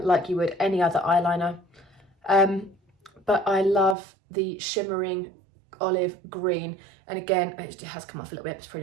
you would any other eyeliner. But I love the shimmering olive green, and again it has come off a little bit, it's probably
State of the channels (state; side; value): drops out; left; at 4.0 s